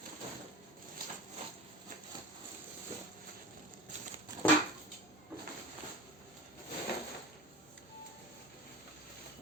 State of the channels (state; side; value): normal; both; correlation 0.33